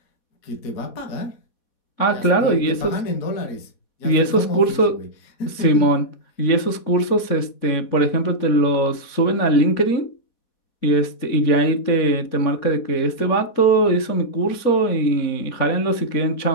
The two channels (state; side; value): late; right; 4.2 ms